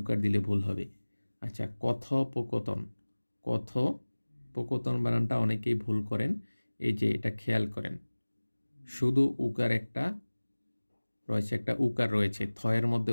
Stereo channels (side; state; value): both; inverted; correlation -1.00